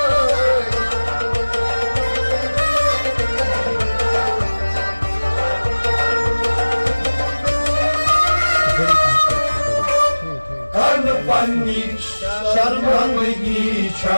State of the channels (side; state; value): both; inverted; correlation -1.00